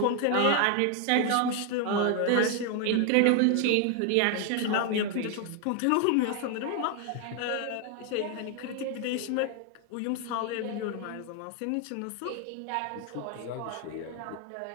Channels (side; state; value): both; different; correlation 0.00